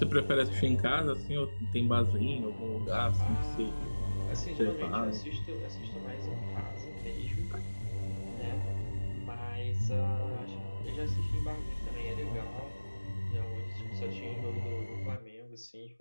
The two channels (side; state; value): both; inverted; correlation -1.00